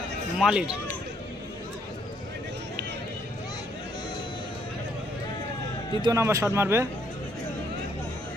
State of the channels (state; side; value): normal; both; correlation 0.70